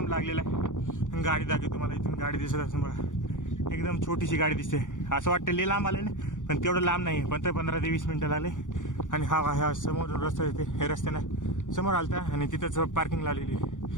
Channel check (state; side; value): late; right; 0.87 ms